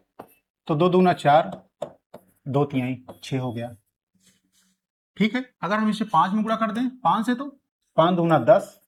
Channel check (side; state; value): both; identical; correlation 1.00